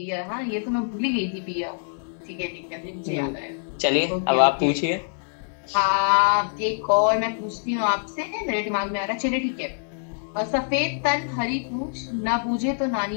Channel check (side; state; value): right; silent; digital silence